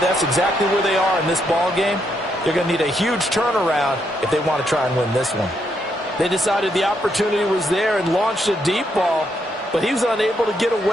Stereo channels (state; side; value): normal; both; correlation 0.77